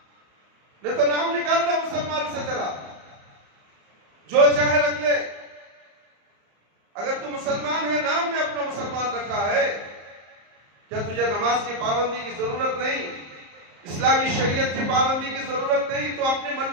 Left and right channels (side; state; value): left; late; 34 ms